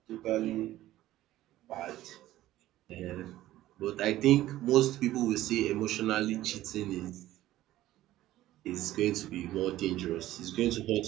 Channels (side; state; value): left; quieter; 14.9 dB